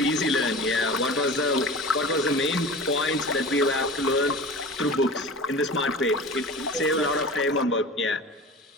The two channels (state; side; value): normal; both; correlation 0.36